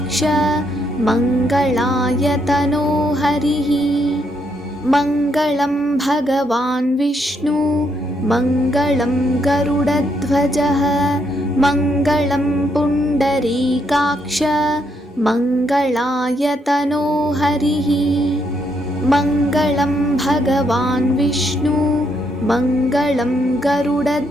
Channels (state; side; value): normal; both; correlation 0.76